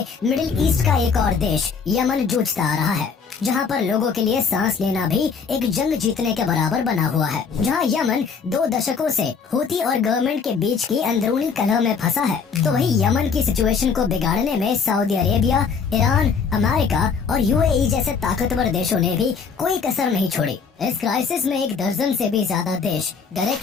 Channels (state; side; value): quieter; right; 5.7 dB